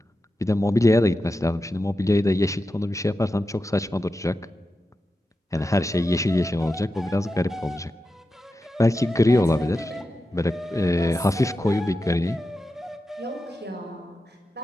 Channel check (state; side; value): normal; both; correlation 0.90